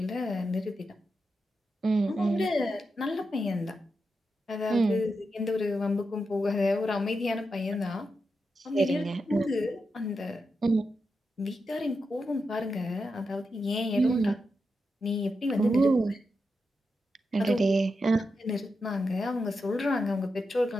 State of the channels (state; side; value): normal; both; correlation 0.87